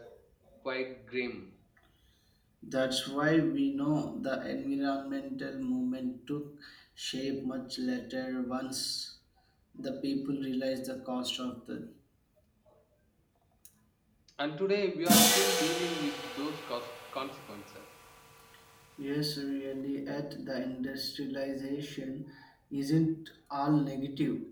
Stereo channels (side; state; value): both; identical; correlation 1.00